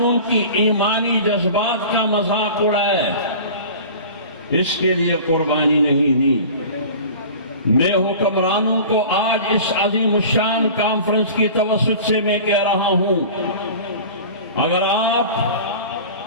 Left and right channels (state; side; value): inverted; both; correlation -0.39